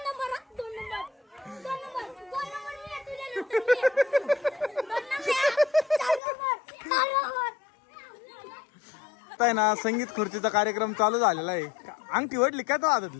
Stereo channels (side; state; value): right; drops out; at 6.2 s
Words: आहे ना संगीत खुर्चीचा कार्यक्रम चालू झालेला आहे. अंगठी वडली काय तो